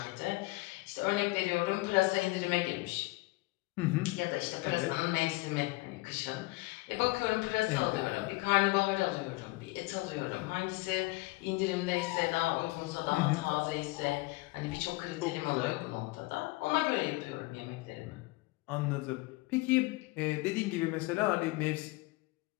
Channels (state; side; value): quieter; right; 22.9 dB